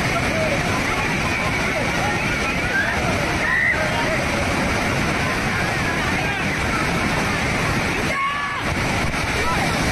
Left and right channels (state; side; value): identical; both; correlation 1.00